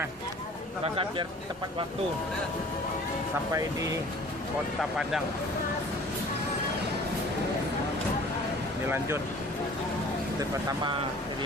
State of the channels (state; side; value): normal; both; correlation 0.48